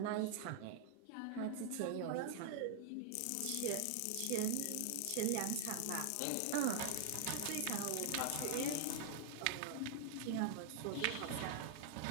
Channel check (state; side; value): different; both; correlation 0.00